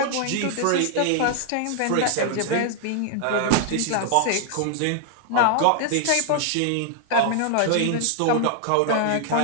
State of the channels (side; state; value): both; different; correlation 0.00